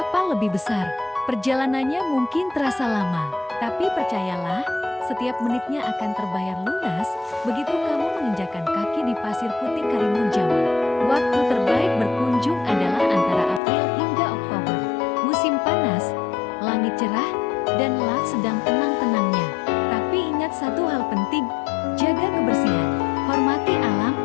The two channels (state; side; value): drops out; right; at 13.6 s